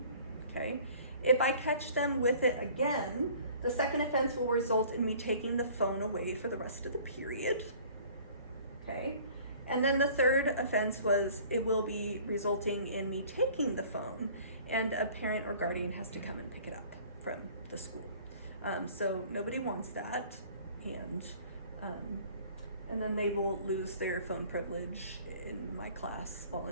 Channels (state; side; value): inverted; both; correlation -0.51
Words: okay? If I catch them with it again, the second offense will result in me taking the phone away for the rest of the period, okay? And then the third offense it will be resulting in me taking the phone, and a parent or guardian has to come and pick it up from the school. So nobody wants that, and then they will lose their phone privilege in my class